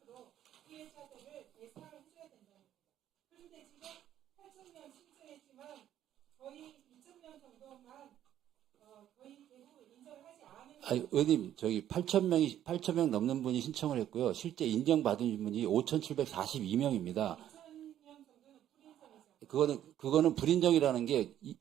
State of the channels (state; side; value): quieter; left; 11.3 dB